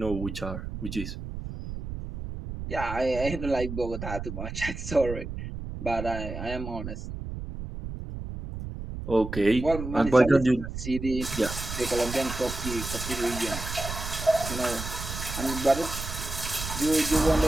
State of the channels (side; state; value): right; noise; rumble, 7 dB below the sound